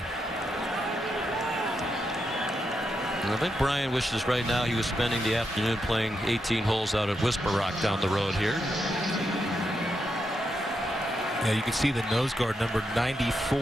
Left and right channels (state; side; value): normal; both; correlation 0.84